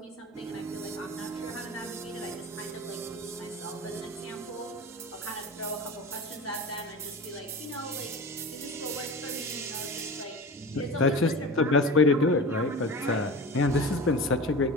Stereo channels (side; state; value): both; normal; correlation 0.32